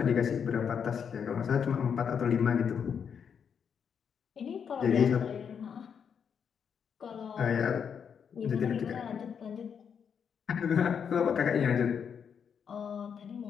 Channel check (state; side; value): quieter; right; 7.2 dB